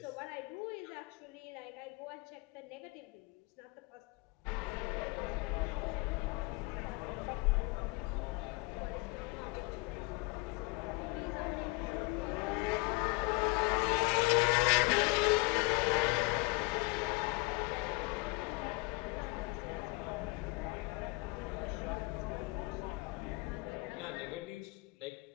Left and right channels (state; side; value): quieter; right; 26.0 dB